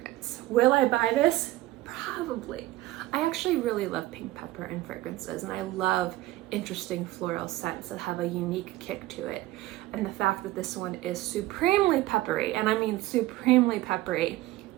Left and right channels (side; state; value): left; quieter; 17.0 dB